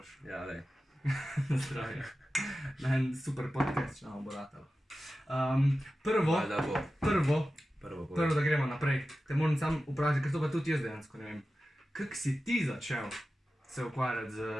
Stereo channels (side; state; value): both; normal; correlation 0.94